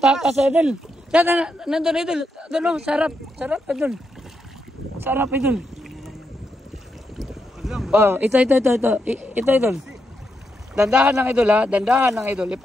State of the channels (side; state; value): both; normal; correlation 0.82